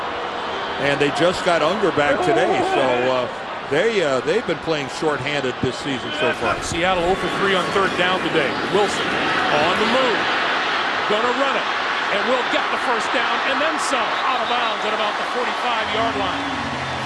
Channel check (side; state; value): both; identical; correlation 1.00